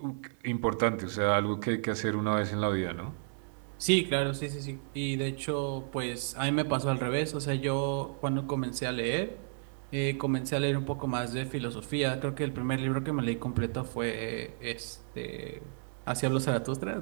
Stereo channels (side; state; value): left; silent; digital silence